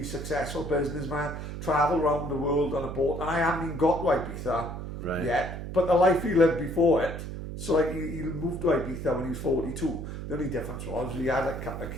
successful businessman, travelled around the world on a boat, and I haven't even got to Ibiza yet, but the life he lived before it. So like he moved to Ibiza when he was 42. The only difference was he had a couple of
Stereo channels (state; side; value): noise; right; hum, 7 dB below the sound